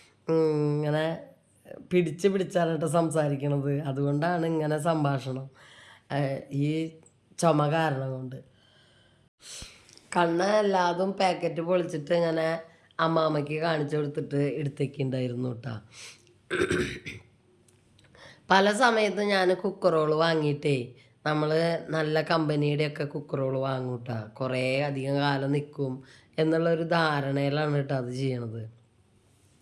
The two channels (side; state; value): both; identical; correlation 1.00